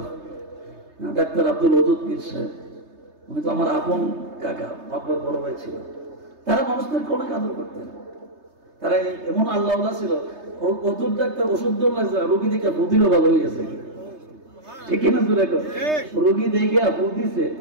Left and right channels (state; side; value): late; left; 3.3 ms